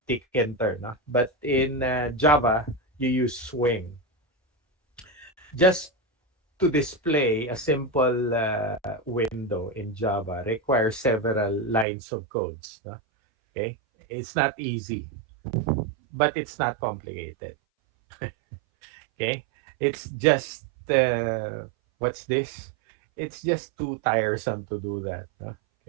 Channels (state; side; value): drops out; left; at 11.9 s